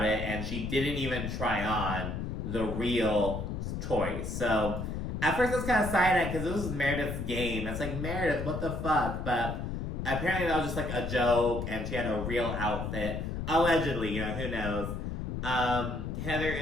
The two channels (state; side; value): noise; left; rumble, 4 dB below the sound